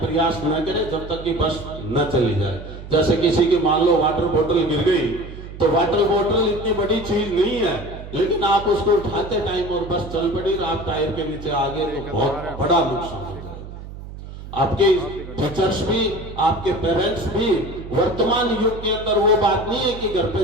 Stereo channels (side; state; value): right; noise; hum, 13 dB below the sound